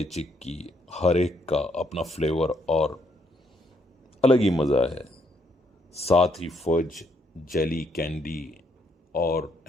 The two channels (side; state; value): both; normal; correlation 0.73